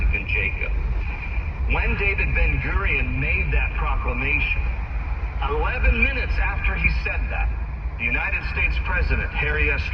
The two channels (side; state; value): both; identical; correlation 1.00